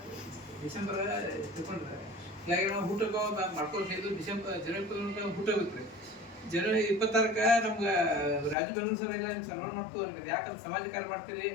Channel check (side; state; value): right; drops out; at 8.6 s